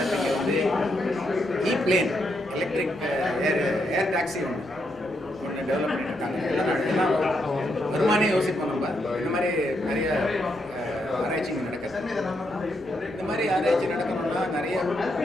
வந்து பிளேன் எலக்ட்ரிக் ஏர் டாக்ஸி ஒன்று டெவலப் பண்ணியிருக்காங்க எல்லாம் வருமானே யோசிப்போம் நம்ம இந்த மாதிரி நிறைய ஆராய்ச்சி நடக்குது இந்த மாதிரி ஆராய்ச்சி நடக்கணும்னா நிறைய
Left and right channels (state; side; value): noise; right; rumble, 26 dB below the sound